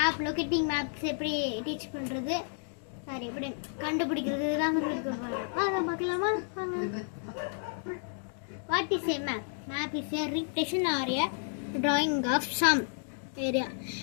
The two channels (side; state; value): right; silent; 56 dB below the other